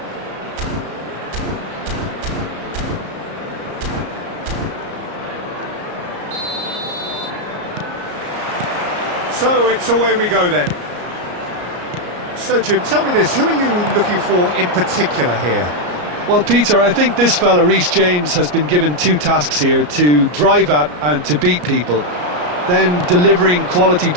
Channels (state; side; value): late; left; 34 ms